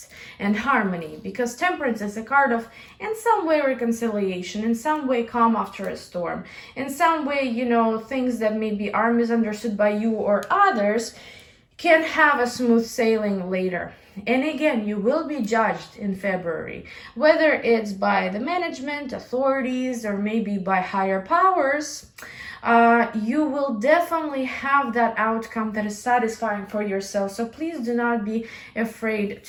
and harmony, because Temperance is a card of, in some way, reconciliation, in some way, calm after a storm, in some way, you know, things that maybe are misunderstood by you or others can have a smooth sailing later. And again, you will be judged in February, whether it's by the management, authorities, or maybe by higher powers. you will definitely have that outcome that is satisfying for yourself. So please do not be afraid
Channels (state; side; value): identical; both; correlation 1.00